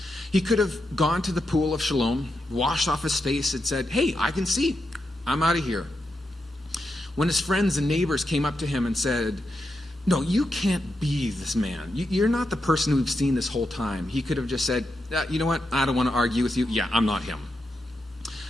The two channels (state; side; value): normal; both; correlation 0.86